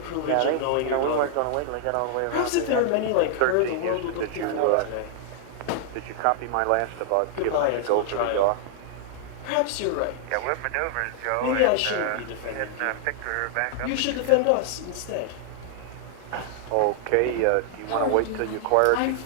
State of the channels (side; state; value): both; different; correlation -0.01